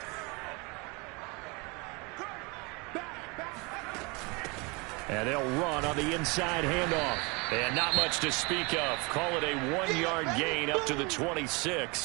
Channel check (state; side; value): quieter; left; 28.2 dB